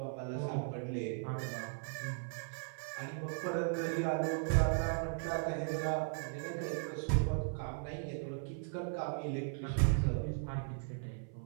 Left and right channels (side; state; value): left; silent; 53 dB below the other